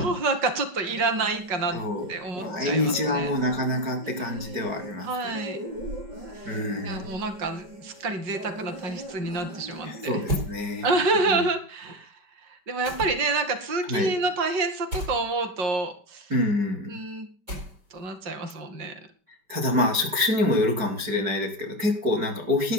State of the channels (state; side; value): late; left; 5.2 ms